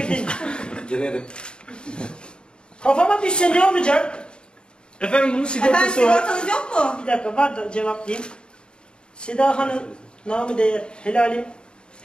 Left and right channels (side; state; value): right; late; 0.050 ms